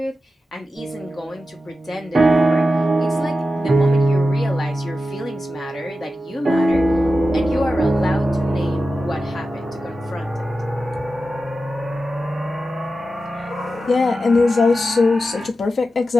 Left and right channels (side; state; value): both; normal; correlation 0.92